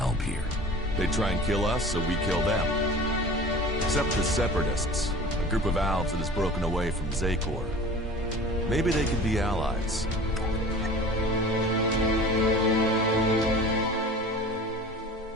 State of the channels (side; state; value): both; normal; correlation 0.40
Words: here? They try and kill us, so we kill them. Except the Separatists, a group of Albs that has broken away from Zakor. Maybe they could be allies.